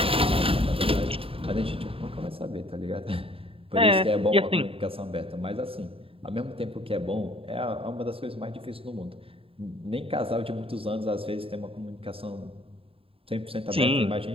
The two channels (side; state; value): left; late; 0.27 ms